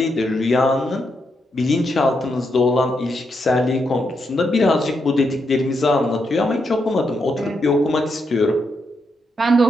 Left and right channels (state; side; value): normal; both; correlation 0.81